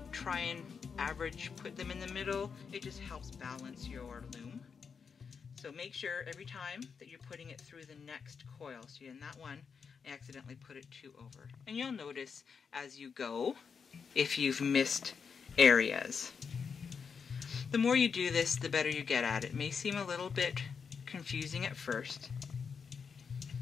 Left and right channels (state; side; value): quieter; right; 6.0 dB